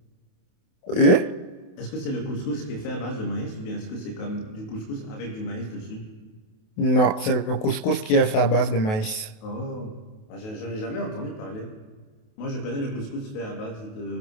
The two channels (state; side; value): late; right; 28 ms